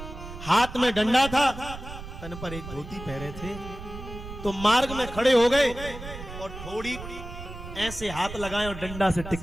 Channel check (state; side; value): noise; right; rumble, 11 dB below the sound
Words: हाथ में डंडा था, तन पर एक धोती पहने थे। तो मार्ग में खड़े हो गए और थोड़ी ऐसे हाथ लगाए और डंडा से